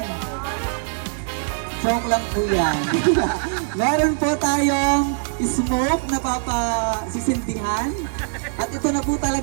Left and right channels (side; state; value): left; silent; digital silence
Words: Joke lang po yan. Meron po tayong smoke na papasisindihan. At ito na po